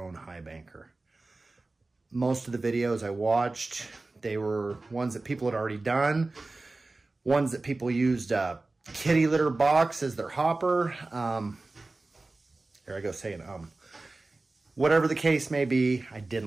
Highbanker. Most of the videos I watched, they were ones that people had already done, ones that people used a kitty litter box as their hopper. There I go saying Whatever the case may be, I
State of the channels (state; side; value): quieter; left; 3.3 dB